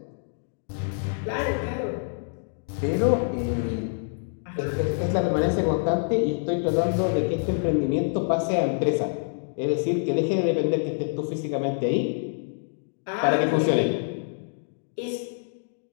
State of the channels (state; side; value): silent; right; digital silence